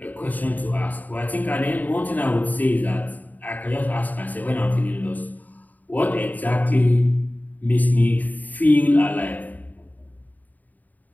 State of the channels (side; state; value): right; late; 0.081 ms